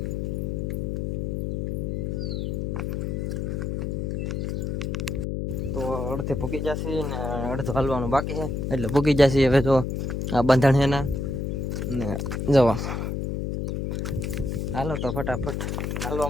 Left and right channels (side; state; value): left; noise; hum, 1 dB below the sound